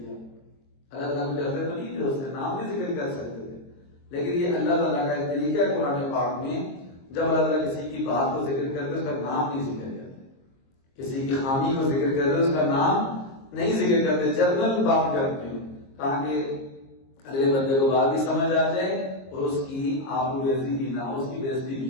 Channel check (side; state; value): right; late; 22 ms